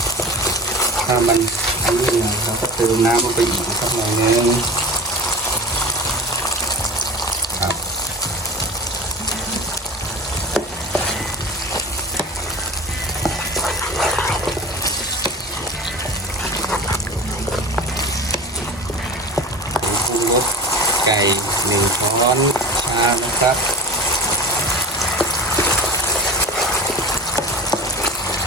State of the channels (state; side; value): normal; both; correlation 0.32